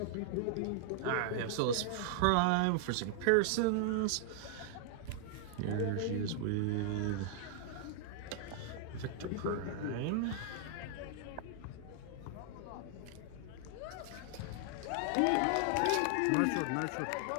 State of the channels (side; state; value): both; different; correlation -0.01